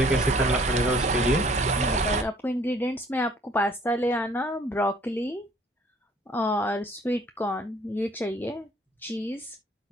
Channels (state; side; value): normal; both; correlation 0.58